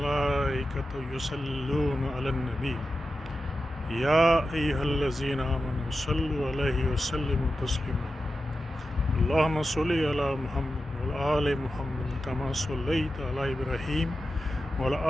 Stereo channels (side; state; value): both; normal; correlation 0.92